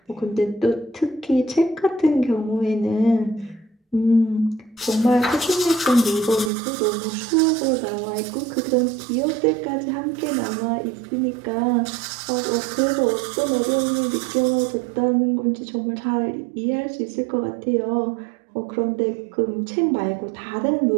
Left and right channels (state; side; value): drops out; left; at 6.5 s